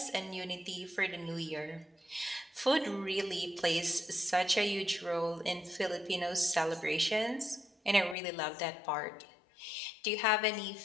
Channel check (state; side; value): drops out; right; at 8.2 s